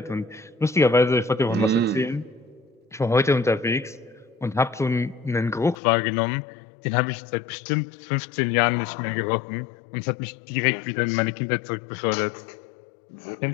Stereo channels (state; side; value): drops out; right; at 5.8 s